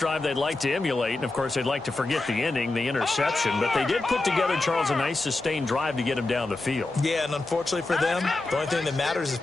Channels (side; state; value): right; quieter; 3.1 dB